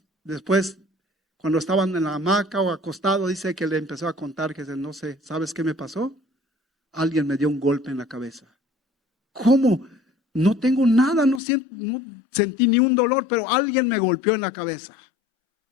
después, cuando estaban en la hamaca o acostado, dice que le empezó a contar que no sé, ¿sabes qué me pasó? Alguien me dio un golpe en la cabeza. ¿Cómo? No tengo nada, no sentí ni un dolor, pero alguien me golpeó en la cabeza.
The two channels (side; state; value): right; drops out; at 11.4 s